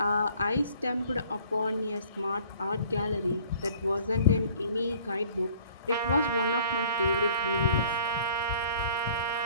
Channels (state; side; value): inverted; both; correlation -0.54